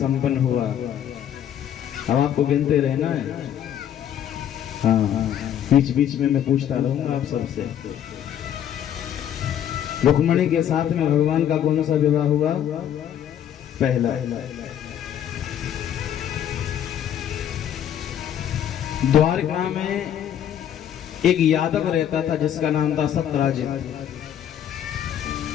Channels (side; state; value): right; quieter; 10.0 dB